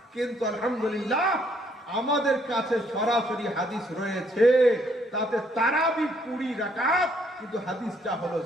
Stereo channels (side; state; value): both; normal; correlation 0.68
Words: কিন্তু আলহামদুলিল্লাহ আমাদের কাছে সরাসরি হাদিস রয়েছে, তাতে তারাবি 20 রাকাত, কিন্তু হাদিসটা হলো